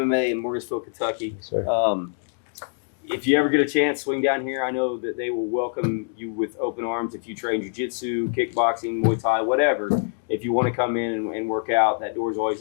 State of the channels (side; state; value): right; silent; digital silence